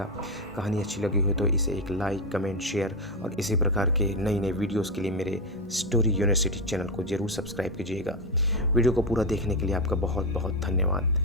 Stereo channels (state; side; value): normal; both; correlation 0.09